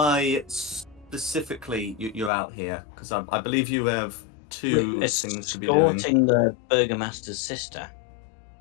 specifically you're out here? Because I believe you have two things to be doing. Escorting the Burgomaster's sister.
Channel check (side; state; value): right; drops out; at 2.3 s